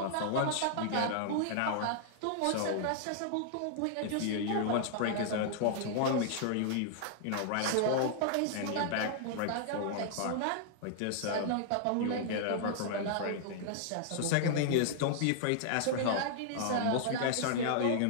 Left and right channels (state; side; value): different; both; correlation -0.01